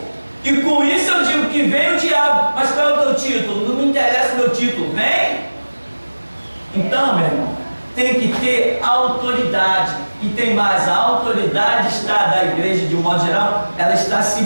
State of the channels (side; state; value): both; inverted; correlation -1.00